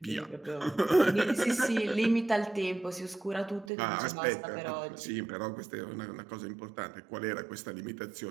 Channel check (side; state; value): left; drops out; at 3.7 s